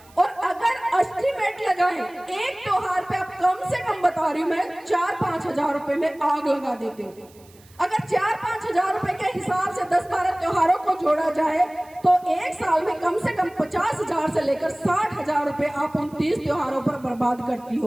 और अगर एस्टिमेट लगाएं, एक त्योहार पे आप कम से कम बता रही हूं मैं 4-5 हजार रुपए में आग लगा देते हो। अगर 4-5 हजार रुपए के हिसाब से 10-12 त्योहारों को जोड़ा जाए तो एक साल में कम से कम 50 हजार से लेकर 60 हजार रुपए आप 29 त्योहारों पर बर्बाद करती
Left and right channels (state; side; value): noise; right; hiss, 27 dB below the sound